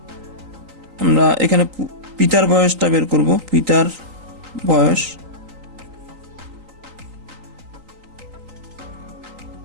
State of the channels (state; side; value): late; left; 3.8 ms